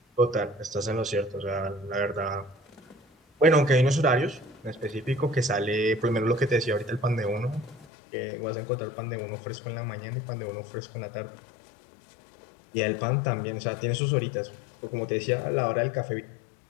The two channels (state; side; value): drops out; right; at 7.9 s